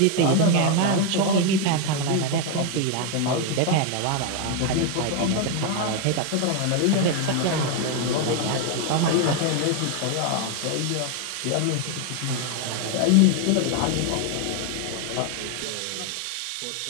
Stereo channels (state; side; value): different; both; correlation 0.01